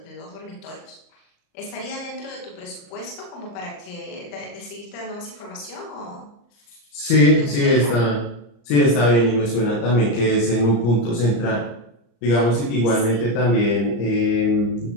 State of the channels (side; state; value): right; late; 34 ms